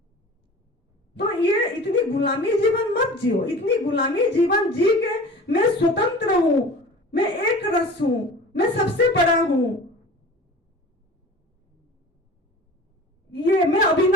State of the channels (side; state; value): both; normal; correlation 0.39